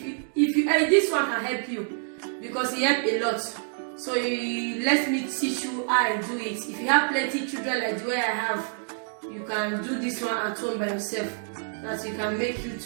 you this one can help you because it helps a lot. So let me teach you how I do it. If you have plenty children like the way I have, you can do this one at home by yourself. That you can make you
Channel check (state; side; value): silent; left; 60 dB below the other